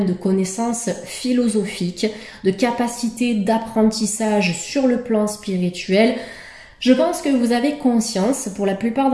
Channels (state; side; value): identical; both; correlation 1.00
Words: de connaissances philosophiques, de capacités d'apprentissage sur le plan spirituel. Je pense que vous avez conscience, pour la plupart